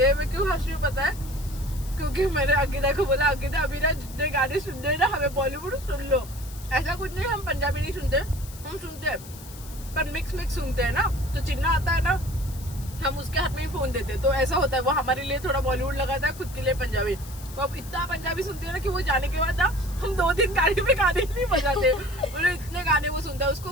मैं क्यों हंस रही हूँ पता है? क्योंकि मैंने अंकिता को बोला, अंकिता अभी ना जितने गाने सुन रहे ना हमें बॉलीवुड सुन लो। ऐसा कुछ नहीं, हम पंजाबी नहीं सुनते, हम सुनते हैं पर मिक्स सुनते हैं ना। तो चिन्ना आता है ना, हम उसके हाथ में ही फोन देते, तो ऐसा होता है वो हमारे लिए थोड़ा बॉलीवुड लगाता है, खुद के लिए पंजाबी। वो अब इतना पंजाबी सुनती है ना कि वो जाने के बाद ना हम 2-3 गाड़ी में गाने ही नहीं बजाते, बोले इतने गाने वो सुनता है।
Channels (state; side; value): noise; left; hiss, 17 dB below the sound